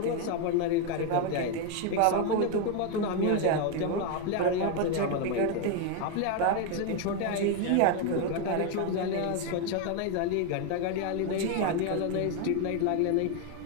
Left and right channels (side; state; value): both; different; correlation 0.01